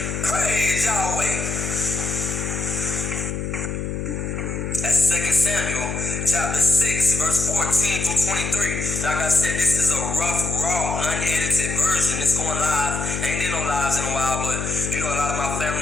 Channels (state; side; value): noise; left; hum, 4 dB below the sound